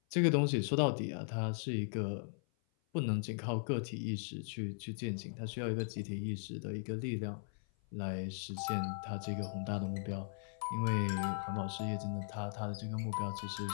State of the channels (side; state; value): right; silent; 52 dB below the other